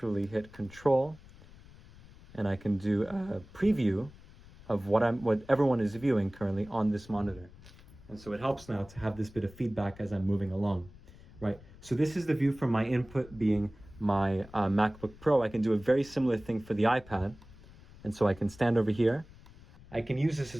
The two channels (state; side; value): noise; left; rumble, 21 dB below the sound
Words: hit Control, and I can do a preview of what everyone is viewing currently on this monitor. And so it helps now to have this bit of feedback as I'm moving along, right? So this is the view from my input being my MacBook Pro. I can do a very similar thing for the iPad. And so I can stand over here. I can use this